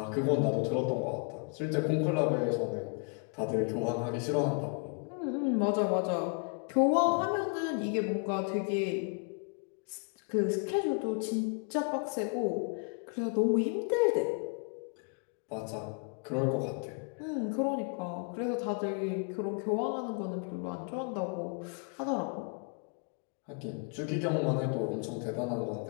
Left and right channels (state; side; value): quieter; right; 37.5 dB